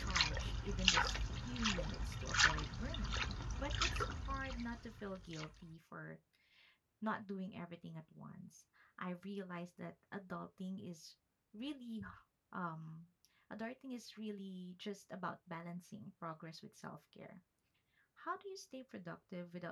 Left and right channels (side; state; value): both; identical; correlation 1.00